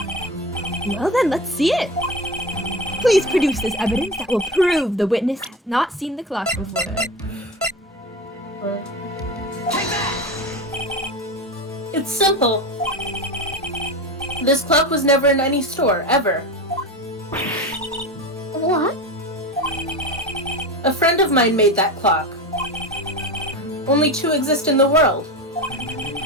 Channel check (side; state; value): both; normal; correlation 0.25